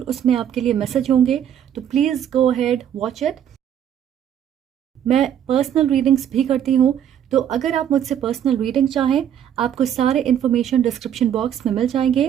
उसमें आपके लिए मैसेज होंगे, तो please go ahead watch it. मैं पर्सनल रीडिंग्स भी करती हूँ, तो अगर आप मुझसे पर्सनल रीडिंग चाहें, आपको सारे इन्फॉर्मेशन डिस्क्रिप्शन बॉक्स में मिल जाएंगे।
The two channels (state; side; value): quieter; left; 9.6 dB